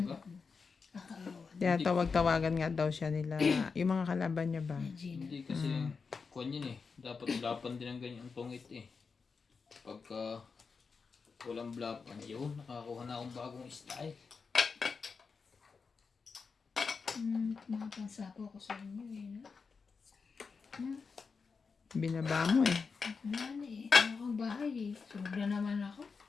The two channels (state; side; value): quieter; right; 5.1 dB